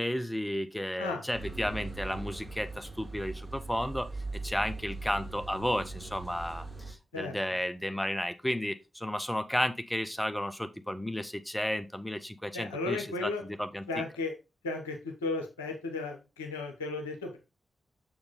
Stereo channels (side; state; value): both; normal; correlation 0.85